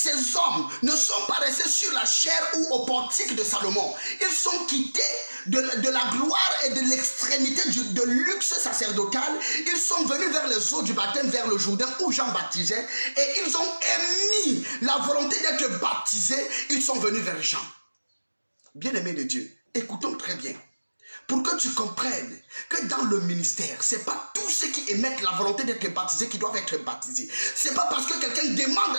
hommes ne sont pas restés sur la chair ou au portique de Salomon. Ils sont quittés de la gloire et de l'extrémité de luxe sacerdotal. Ils sont venus vers les eaux du baptême, vers le Jourdain où Jean baptisait. Et ils ont émis la volonté d'être baptisés. Ils sont venus vers Jean. Bien-aimés de Dieu, écoutons très bien. Pour que tu comprennes que dans le ministère, ce n'est pas tous ceux qui émettent la volonté d'être baptisés qui doivent être baptisés. Ce n'est pas parce que quelqu'un demande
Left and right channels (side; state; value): both; inverted; correlation -1.00